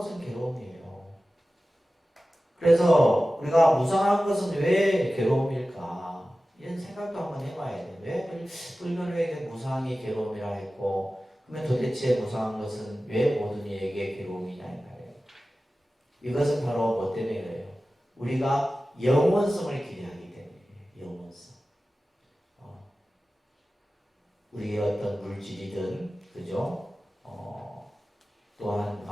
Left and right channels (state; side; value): normal; both; correlation 0.95